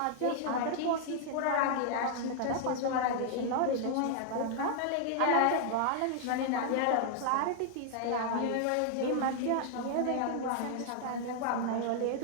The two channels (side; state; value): both; different; correlation 0.00